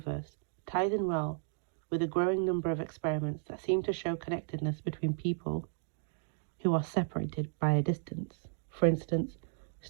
ties in well with a growing number of experiments that seem to show connectedness between people who are separated by a distance. For instance,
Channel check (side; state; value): left; silent; digital silence